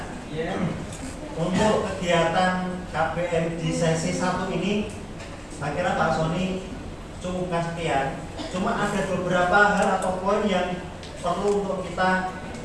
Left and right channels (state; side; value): identical; both; correlation 1.00